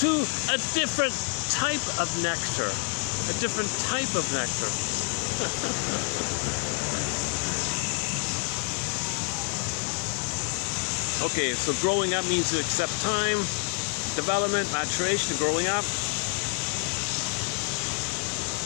to a different type of nectar. A different type of nectar. Okay, so growing up means to accept time, development, maturation, growing up.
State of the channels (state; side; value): quieter; right; 35.7 dB